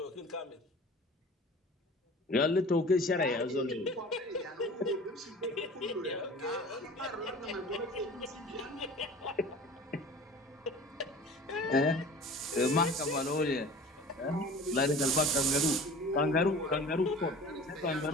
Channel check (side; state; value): both; normal; correlation 0.42